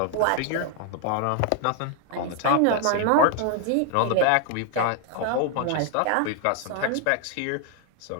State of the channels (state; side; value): different; both; correlation 0.00